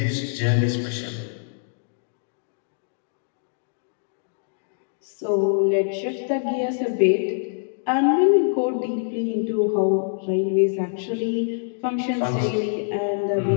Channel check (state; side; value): silent; right; digital silence